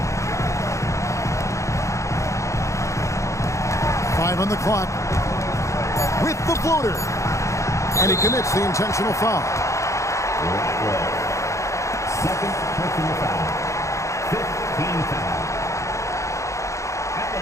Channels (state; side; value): late; right; 0.15 ms